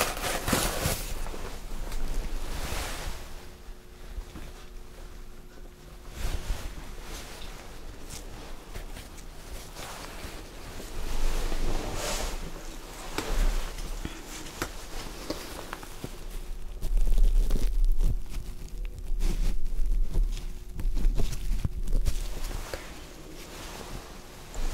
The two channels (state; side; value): identical; both; correlation 1.00